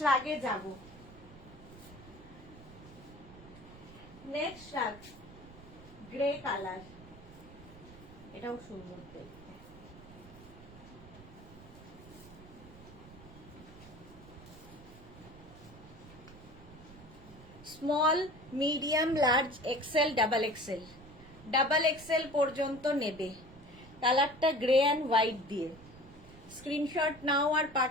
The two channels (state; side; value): noise; right; rumble, 19 dB below the sound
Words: রাগে যাব। নেক্সট রাগ গ্রে কালার, এটাও সুন্দর দেখতে। Small medium large XL double XL, double XL পর্যন্ত নেবে। কালারটা গ্রে অ্যান্ড হোয়াইট দিয়ে। স্ক্রিনশট নাও আর